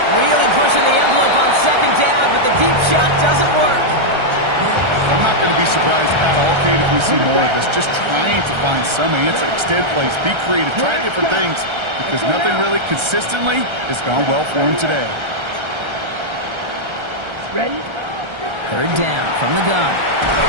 Really pushing the envelope on second down, but the deep shot doesn't work. I'm not going to be surprised at all, Kate, if we see more of this. Just trying to find some answer. Extend plays, be creative, try different things, because nothing really consistently has gone well for him today. Ready? Third down from the gun.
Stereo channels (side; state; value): left; late; 1.3 ms